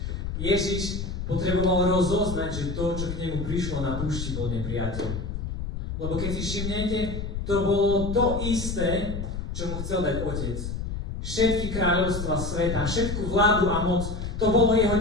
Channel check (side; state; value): left; noise; rumble, 5 dB below the sound